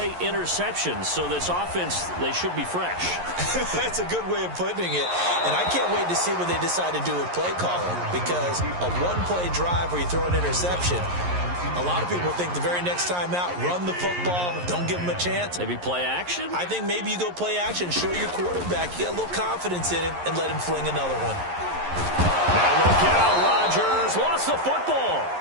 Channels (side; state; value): left; late; 11 ms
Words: interception, so this offense, they should be fresh. That's a good way of putting it. And I can't wait to see what they decide to do with play calling, because a 1-play drive where you throw an interception, a lot of people think the very next time out, run the football, don't give them a chance. Maybe play action? I think maybe you go play action, show your quarterback, you got a little confidence in him, and let him fling another one. Now look out, Rodgers lost the football,